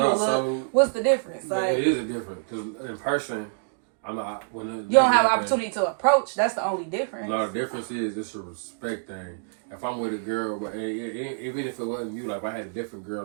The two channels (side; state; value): left; silent; digital silence